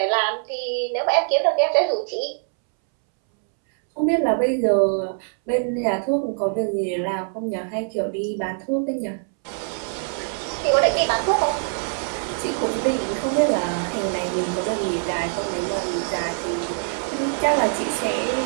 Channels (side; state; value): left; silent; 63 dB below the other